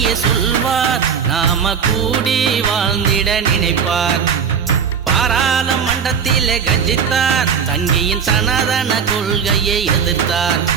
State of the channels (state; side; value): quieter; left; 6.9 dB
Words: சொல்வார், நாம கூடி வாழ்ந்திட நினைப்பார். பாராளுமன்றத்திலே கர்ஜித்தார், சங்கியின் சனாதன கொள்கையை எதிர்த்தார்.